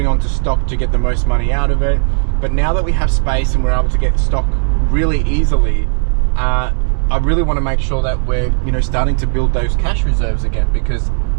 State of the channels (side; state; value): left; silent; 63 dB below the other